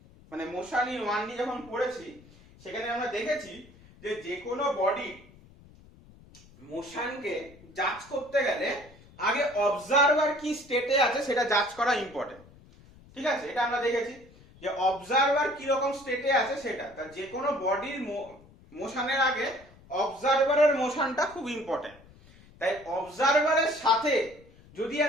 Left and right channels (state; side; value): noise; left; rumble, 24 dB below the sound